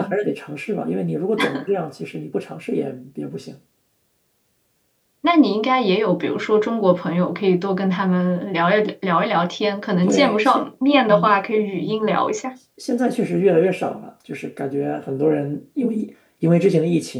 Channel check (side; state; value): both; identical; correlation 1.00